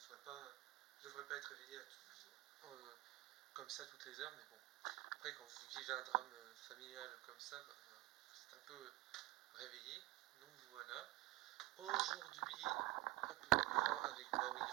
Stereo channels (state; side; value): quieter; left; 18.7 dB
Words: devrais pas être réveillé comme ça toutes les heures, mais bon. Après quand vous vivez un drame familial comme ça, bah, c'est un peu réveillé. Donc voilà. Aujourd'hui, je vous prends avec moi, oui,